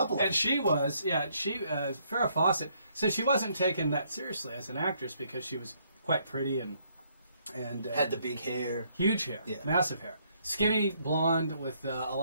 And she was, Farrah Fawcett. So she wasn't taken that seriously as an actress because she was quite pretty and had the big hair, huge hair, massive hair, skinny blonde with a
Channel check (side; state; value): both; inverted; correlation -0.70